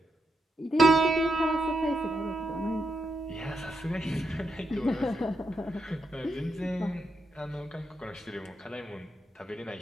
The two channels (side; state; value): both; normal; correlation 0.83